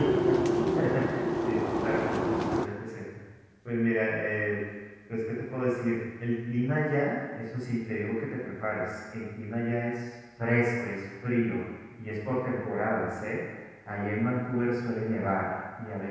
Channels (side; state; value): both; identical; correlation 1.00